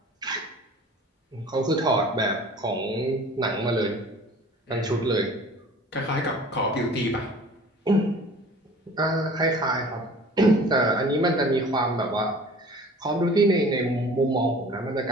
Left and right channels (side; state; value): both; normal; correlation 0.45